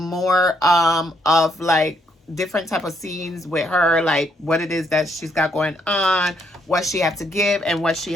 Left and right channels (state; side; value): normal; both; correlation 0.73